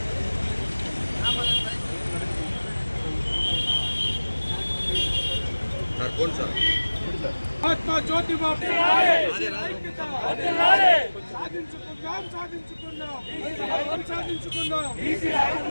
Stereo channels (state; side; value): inverted; both; correlation -1.00